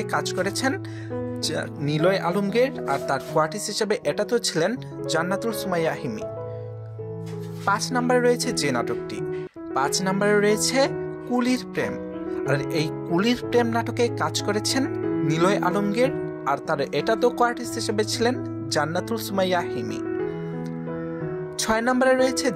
কাজ করেছেন নিলয় আলমগীর, আর তার কোয়ার্টিস হিসাবে এটাতেও ছিলেন জান্নাতুল সুমাইয়া হিমি। 5 নাম্বারে রয়েছে যে নাটকটি, 5 নাম্বারে রয়েছে কুলির প্রেম। আর এই কুলির প্রেম নাটকে কাজ করেছেন নিলয় আলমগীর, আর তার এটাতেও কোয়ার্টিস হিসেবে ছিলেন জান্নাতুল সুমাইয়া হিমি। 6 নাম্বারে রয়েছে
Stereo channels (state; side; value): identical; both; correlation 1.00